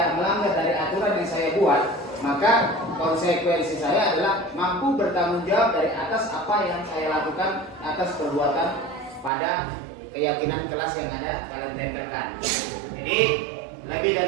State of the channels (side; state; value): left; drops out; at 9.3 s